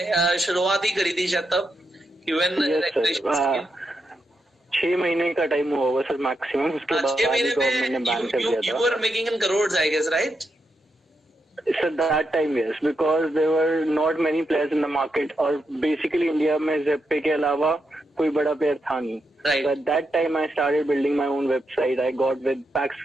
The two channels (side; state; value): both; normal; correlation 0.84